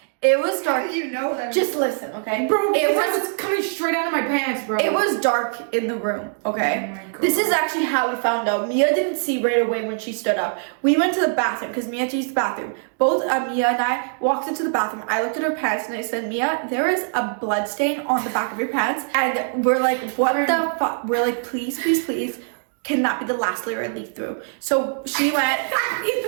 It was How dark. did you know that? Just listen, okay? Bro, it it was was coming straight out of my pants, bro. It was dark in the room, okay? Oh my God. This is actually how we found out. Mia didn't see right away when she stood up. We went to the bathroom because Mia had to use the bathroom. Both Mia and I walked into the bathroom. I looked at her pants and I said, Mia, there is a blood stain on the back of your pants. And we're like, what the fuck? We're like, please, please, please. Can that be the last layer I leak through? So she went.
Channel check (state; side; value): silent; left; 64 dB below the other